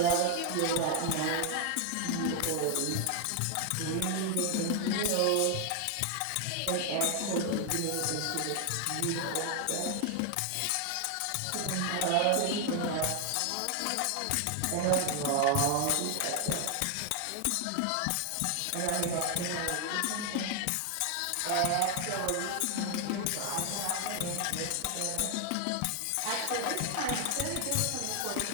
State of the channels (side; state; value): both; different; correlation 0.00